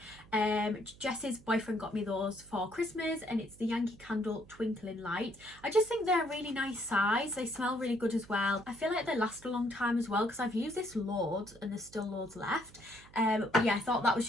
Jess's boyfriend got me those for Christmas, and it's the Yankee Candle Twinkling Light. I just think they're a really nice size. They smell really good as well. I feel like they last a long time as well, because I've used this loads and there's still loads left. But yeah, I thought that was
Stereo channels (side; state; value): right; noise; hum, 23 dB below the sound